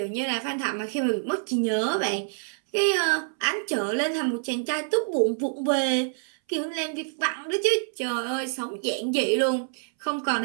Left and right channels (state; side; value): silent; left; 60 dB below the other